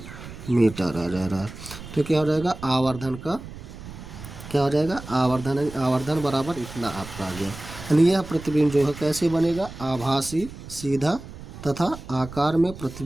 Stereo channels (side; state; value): right; noise; rumble, 13 dB below the sound